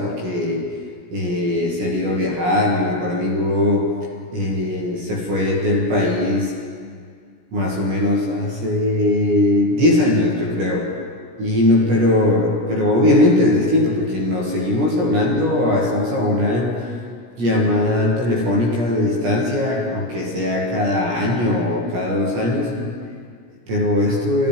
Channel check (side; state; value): left; late; 17 ms